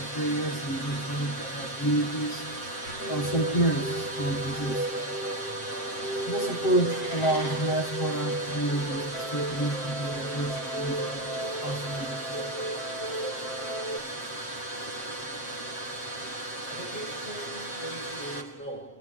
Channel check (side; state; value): right; late; 7.6 ms